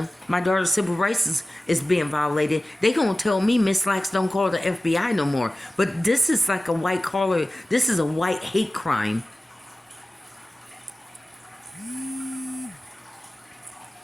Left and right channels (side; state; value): both; normal; correlation 0.97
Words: my daughter's civil rights is being violated. They gonna tell me Miss Lax don't call the FBI no more. But this is like a white collar. This is a white hate crime.